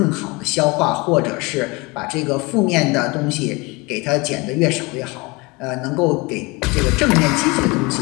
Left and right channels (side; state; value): right; quieter; 25.6 dB